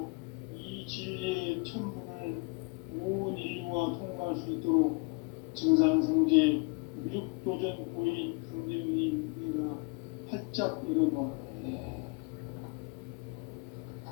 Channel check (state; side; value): quieter; right; 31.1 dB